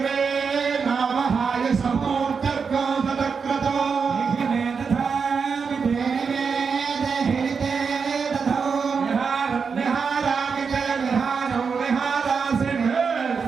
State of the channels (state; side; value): quieter; left; 5.6 dB